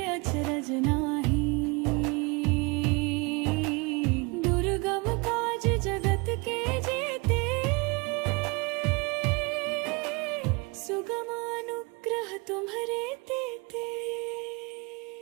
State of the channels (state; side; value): quieter; left; 28.3 dB